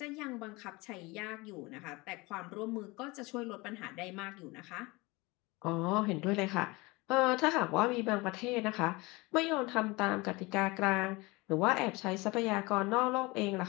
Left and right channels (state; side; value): quieter; right; 24.0 dB